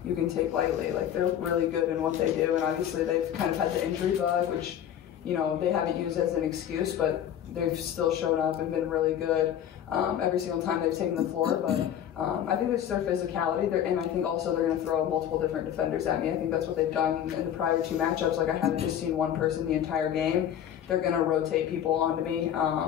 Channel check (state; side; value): quieter; right; 10.1 dB